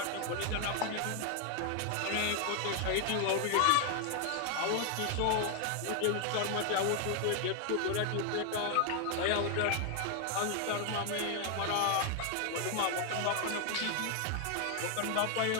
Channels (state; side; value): different; both; correlation 0.00